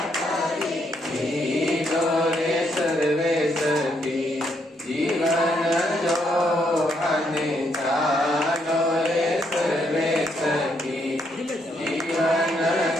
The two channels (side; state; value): both; normal; correlation 0.74